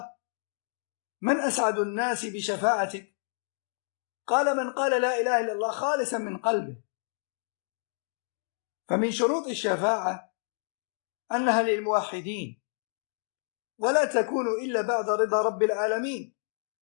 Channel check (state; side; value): silent; right; digital silence